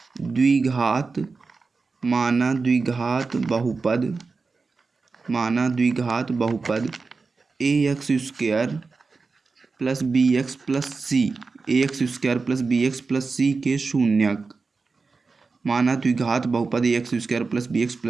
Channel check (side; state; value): left; quieter; 4.3 dB